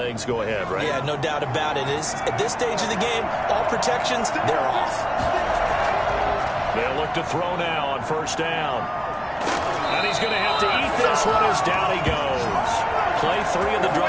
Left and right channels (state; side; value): identical; both; correlation 1.00